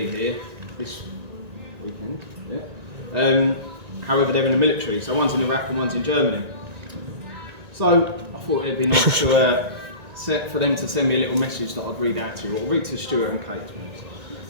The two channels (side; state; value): left; late; 1.9 ms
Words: here this weekend. Yeah. However, they're in the military, so one's in Iraq and one's in Germany. So I thought it'd be nice to for them to send me a little message that I'd read out to you. I'll read to Stuart and Kate.